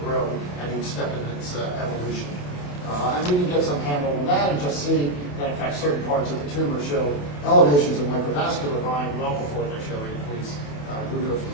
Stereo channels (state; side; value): late; right; 28 ms